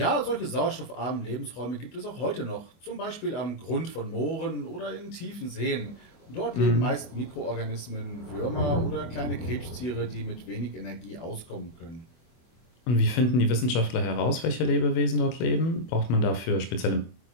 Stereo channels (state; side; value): late; right; 24 ms